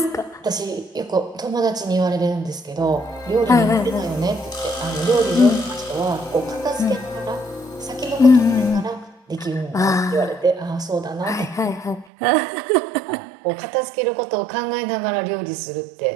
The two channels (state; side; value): drops out; left; at 12.1 s